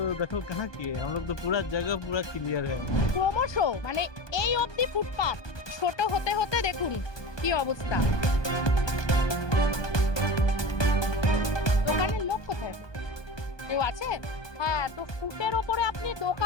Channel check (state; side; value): late; right; 1.2 ms